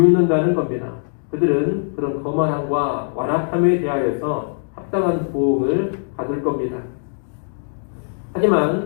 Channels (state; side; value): silent; right; digital silence